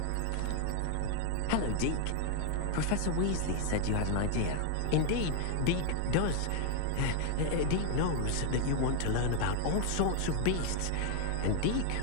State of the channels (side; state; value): both; different; correlation 0.00